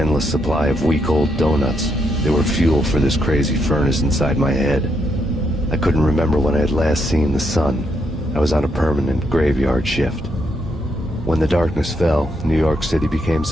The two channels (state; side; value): normal; both; correlation 0.78